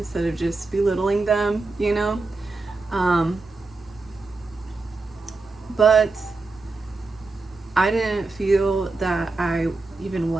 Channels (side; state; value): left; quieter; 3.6 dB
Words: of just belittling them, you know? But I didn't feel that I even